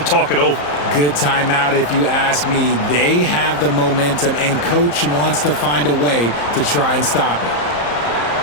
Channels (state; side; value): late; right; 34 ms